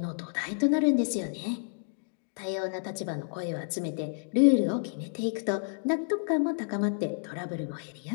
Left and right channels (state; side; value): silent; right; digital silence